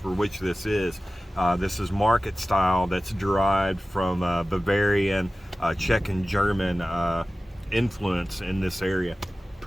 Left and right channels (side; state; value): both; normal; correlation 0.96